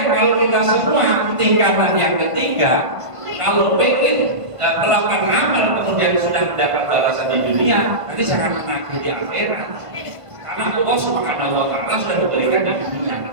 kalau kita semua tingkatan yang ketiga, kalau pengen melakukan amal kemudian sudah mendapat balasan di dunia, nanti jangan menagih di akhirat. Karena Allah Subhanahu wa taala sudah memberikan di dunia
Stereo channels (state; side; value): late; left; 1.5 ms